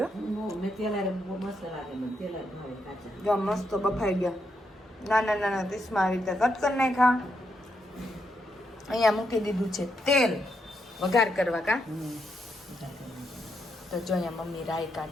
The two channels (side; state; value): both; normal; correlation 0.80